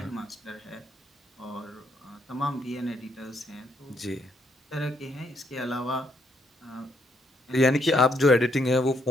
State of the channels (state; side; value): normal; both; correlation 0.73